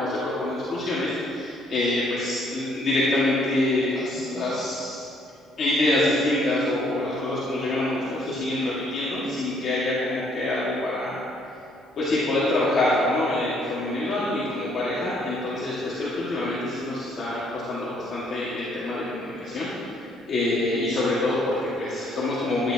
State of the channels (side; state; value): both; normal; correlation 0.66